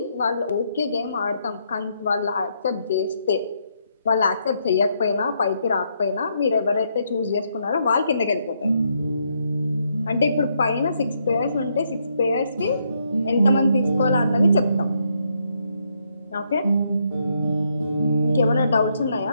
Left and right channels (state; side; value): inverted; both; correlation -0.76